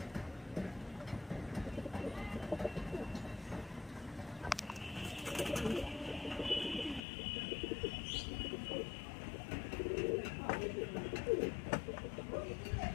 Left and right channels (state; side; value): drops out; right; at 7.0 s